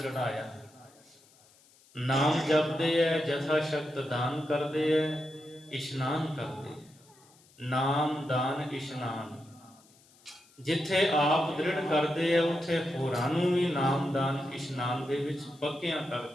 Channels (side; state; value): left; noise; hiss, 29 dB below the sound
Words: ਨਾਮ ਜਪਦੇ ਐ, ਜਥਾ ਸ਼ਕਤ ਦਾਨ ਕਰਦੇ ਐ, ਇਸ਼ਨਾਨ ਕਰਦੇ ਐ। ਨਾਮ ਦਾਨ ਇਸ਼ਨਾਨ, ਜਿੱਥੇ ਆਪ ਦ੍ਰਿੜ ਕਰਦੇ ਐ, ਉੱਥੇ ਹੋਰਾਂ ਨੂੰ ਵੀ ਨਾਮ ਦਾਨ ਇਸ਼ਨਾਨ ਦੇ ਵਿੱਚ ਪੱਕਿਆਂ